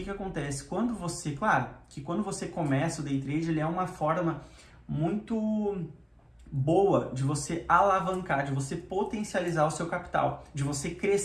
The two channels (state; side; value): identical; both; correlation 1.00